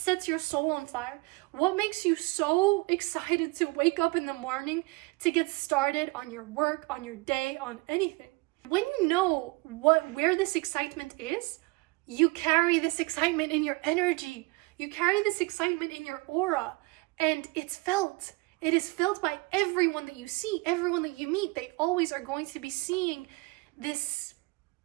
your soul on fire? What makes you so excited to wake up in the morning to get started on your work, on your day, on anything? When you know where this excitement is, you carry this excitement in your energy. You carry this excitement in your aura, and it's felt. It is felt by everyone that you see, everyone that you meet. They always are going to be seeing this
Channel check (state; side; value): quieter; left; 25.9 dB